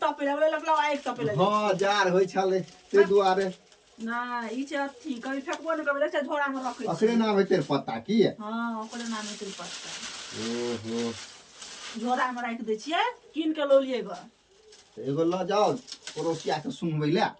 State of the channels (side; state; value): both; identical; correlation 1.00